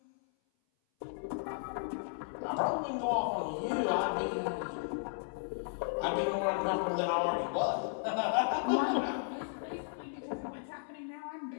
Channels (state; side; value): silent; right; 55 dB below the other